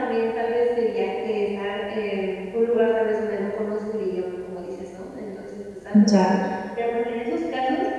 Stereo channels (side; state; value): both; identical; correlation 1.00